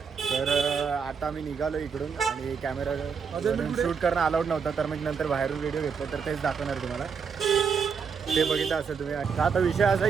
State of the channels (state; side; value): quieter; left; 6.1 dB